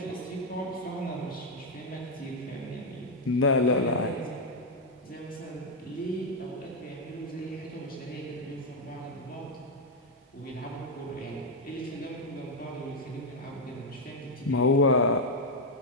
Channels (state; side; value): normal; both; correlation 0.01